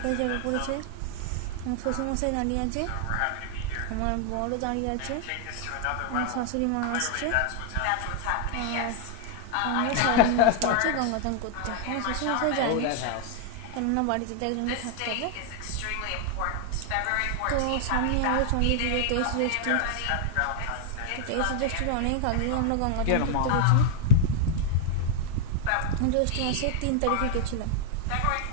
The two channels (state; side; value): different; both; correlation 0.00